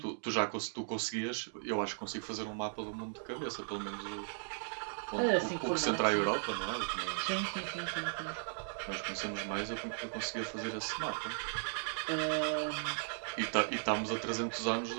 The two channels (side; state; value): left; silent; 53 dB below the other